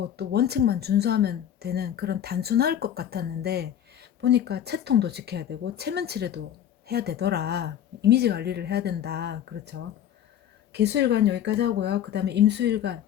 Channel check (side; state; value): right; quieter; 10.1 dB